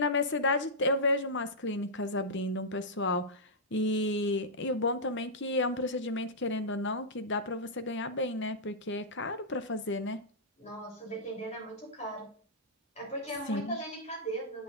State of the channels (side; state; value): both; normal; correlation -0.12